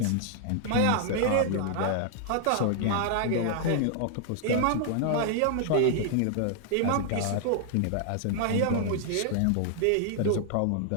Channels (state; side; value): different; both; correlation 0.00